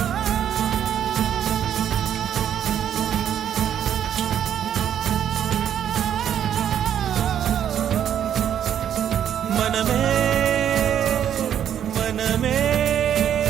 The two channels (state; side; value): quieter; left; 9.6 dB